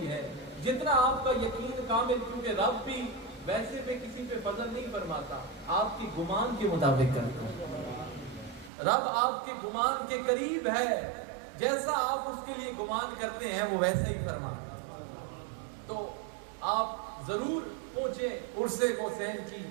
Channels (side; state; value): left; drops out; at 8.7 s